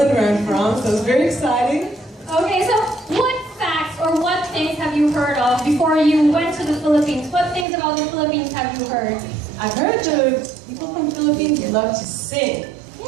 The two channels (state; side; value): drops out; left; at 7.7 s